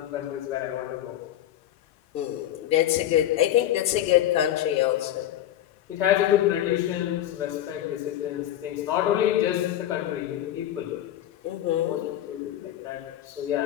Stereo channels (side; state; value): right; quieter; 12.3 dB